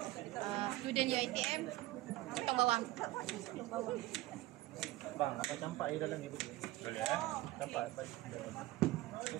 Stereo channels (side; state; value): left; quieter; 17.6 dB